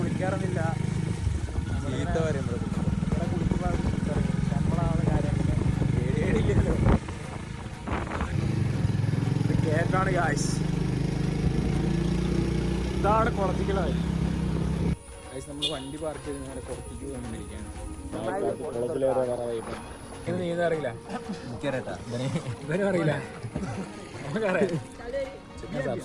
നമ്മളാണ് കാര്യം പേടിയില്ലല്ലോ. ഇത് കേക്കാണ് ഗായ്സ്. ഇതാണ് കുളത്തിക്കലായി ഗായ്സ്. നമ്മൾ വണ്ടി പാർക്ക് ചെയ്ത് നേരെ പുറത്തേക്ക് വന്നിരിക്കുകയാണ്. നീന്താ അറിയില്ല, ഇവനും അറിയില്ല, നമുക്കറിയാം.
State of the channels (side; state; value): both; identical; correlation 1.00